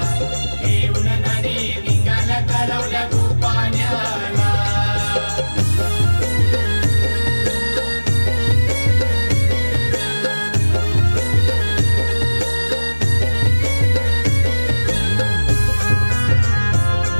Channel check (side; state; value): both; inverted; correlation -1.00